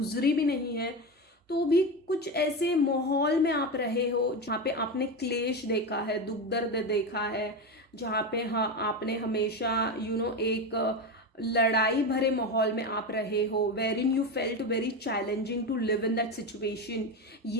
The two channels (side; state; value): both; normal; correlation 0.18